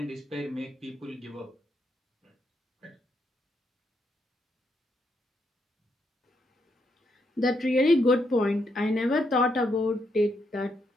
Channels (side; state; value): both; normal; correlation 0.78